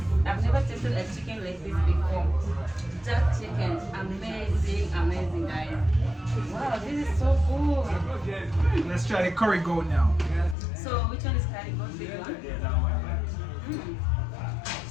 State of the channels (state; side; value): drops out; right; at 10.6 s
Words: I've never tasted a chicken like this before. Jack chicken, amazing, amazing, guys. Wow, this is so good. Let's try the curry goat now. So which one is curry goat? This one? Yeah, that one.